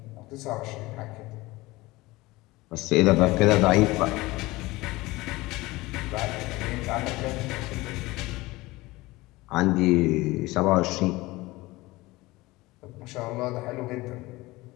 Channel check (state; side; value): quieter; right; 20.5 dB